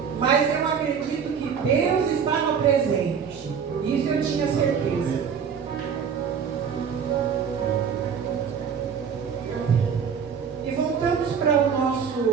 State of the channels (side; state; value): left; quieter; 6.9 dB